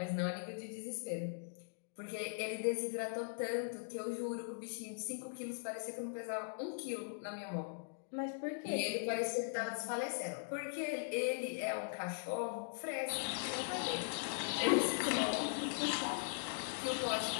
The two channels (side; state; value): right; silent; digital silence